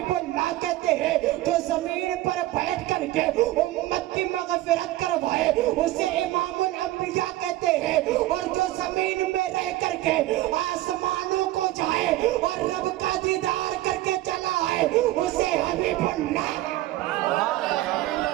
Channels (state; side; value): quieter; left; 16.4 dB